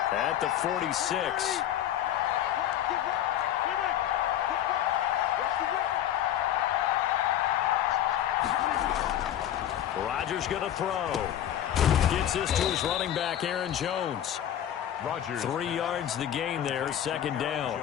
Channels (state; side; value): quieter; right; 11.1 dB